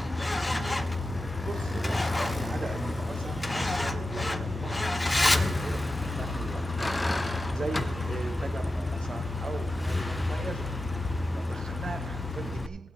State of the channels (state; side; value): normal; both; correlation 0.92